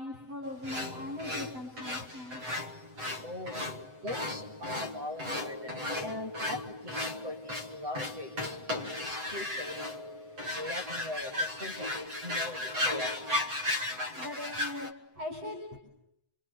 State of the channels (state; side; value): late; left; 7.9 ms